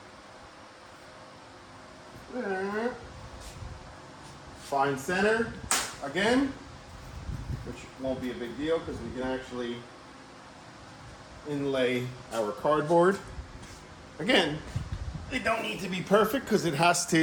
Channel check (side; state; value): both; identical; correlation 1.00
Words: Find center again, which won't be a big deal because we can actually inlay our cardboard. Again, they don't need to be perfect because it has